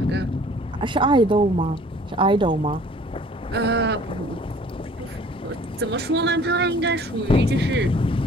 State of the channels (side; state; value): both; normal; correlation 0.52